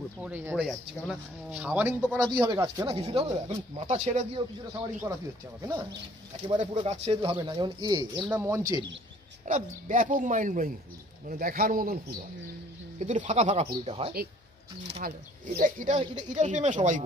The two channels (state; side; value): normal; both; correlation 0.57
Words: পড়ে যাচ্ছে। কেননা শাওয়ারিং তো করাতেই হবে গাছকে না, কিছুটা হবে। এখন মাথা ছেড়ে দিয়েও কিছুটা শাওয়ারিং করাতেই হচ্ছে আমাকে না, একেবারে পুরো গাছ ছেড়ে দিলে হবে না। যেমন এর নাম মঞ্চেরি, একটা ব্যাপক মাইন্ড ব্লোয়িং ফুল, মানে দেখার মতন ফুল হয়, কিন্তু একটু ফাঁকা ফাঁকা ফুল এটা হয়। ভালো, এটার প্রেমে সবাই